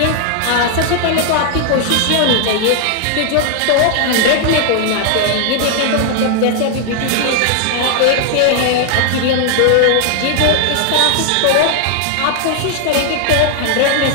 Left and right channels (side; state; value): both; different; correlation 0.00